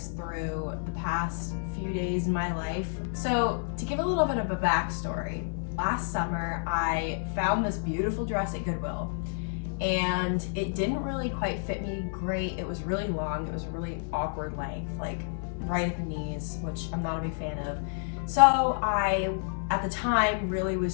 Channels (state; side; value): silent; right; 58 dB below the other